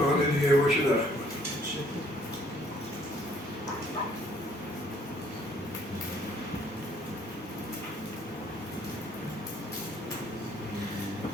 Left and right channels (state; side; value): normal; both; correlation 0.62